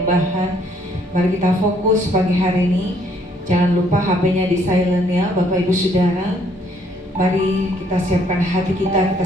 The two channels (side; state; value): both; normal; correlation 0.66